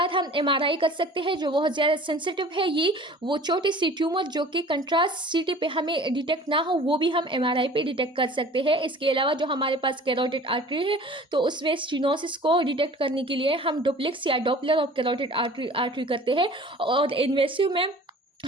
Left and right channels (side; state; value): both; normal; correlation 0.45